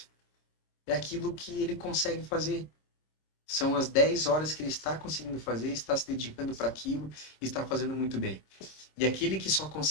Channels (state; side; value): late; right; 26 ms